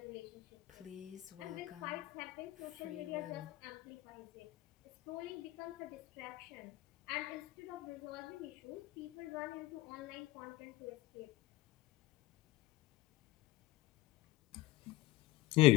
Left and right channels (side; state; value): right; quieter; 18.2 dB